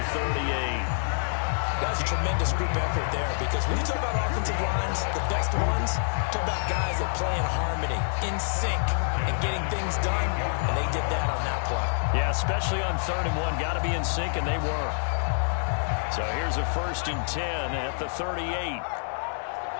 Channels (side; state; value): right; silent; digital silence